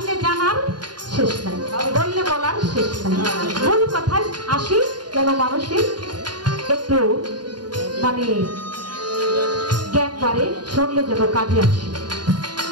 জানার শেষ নাই, বললে বলার শেষ নাই। মূল কথায় আসি, যেন মানুষের একটু মানে জ্ঞান বাড়ে, শুনলে যেন কাজে আসে।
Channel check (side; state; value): left; late; 0.70 ms